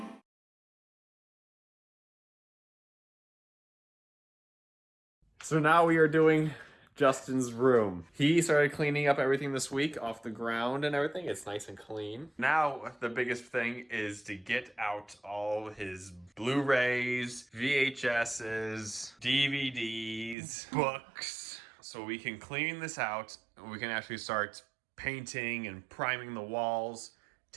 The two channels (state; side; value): drops out; left; at 20.4 s